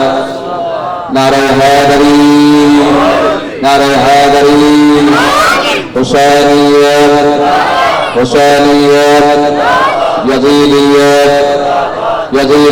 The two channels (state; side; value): identical; both; correlation 1.00